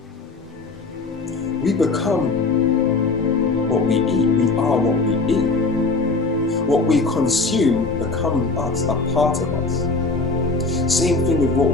we become what we eat. We are what we eat. What we consume becomes us, a part of us. Same thing with what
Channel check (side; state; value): right; quieter; 3.8 dB